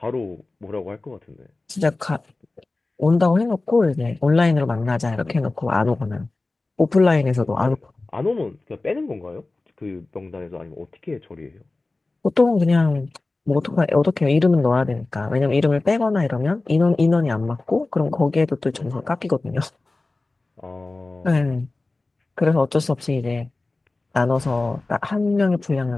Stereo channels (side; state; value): right; quieter; 3.2 dB